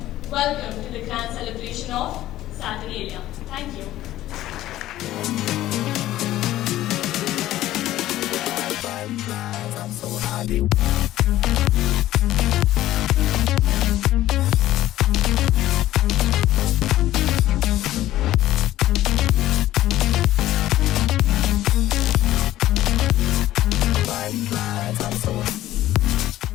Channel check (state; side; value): quieter; right; 14.5 dB